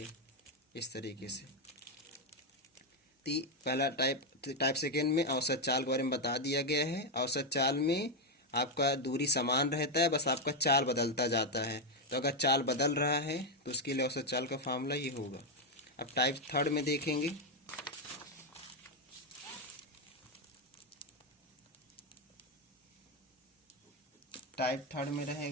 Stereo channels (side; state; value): both; normal; correlation 0.04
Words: इस तरीके से। पहला टाइप सेकेंड में औसत चाल के बारे में बता दिया गया है। औसत चाल में आपका दूरी समान रहता है, बस आपका चाल बदलता जाता है। तो अगर चाल बदल रहा है तो उसके लिए औसत चाल का फार्मूला ये होगा। अब टाइप थर्ड में देखेंगे, टाइप थर्ड में